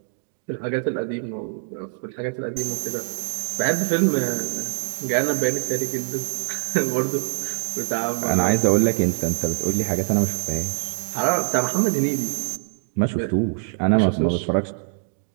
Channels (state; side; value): silent; left; digital silence